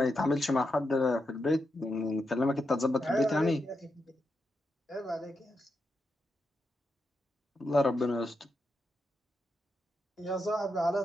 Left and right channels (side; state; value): both; normal; correlation 0.85